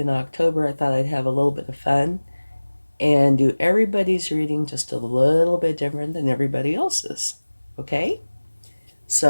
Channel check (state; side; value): inverted; both; correlation -1.00